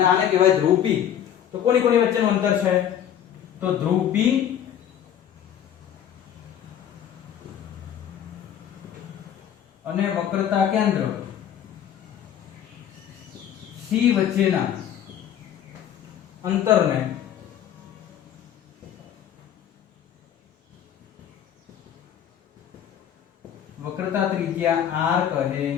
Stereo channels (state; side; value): quieter; right; 9.9 dB